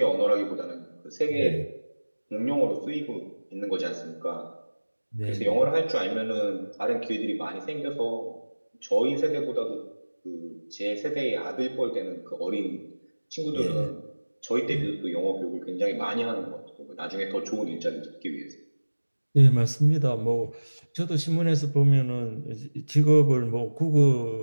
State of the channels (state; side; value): inverted; both; correlation -1.00